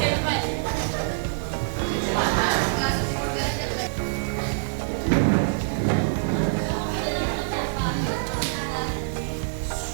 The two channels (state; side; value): silent; left; 62 dB below the other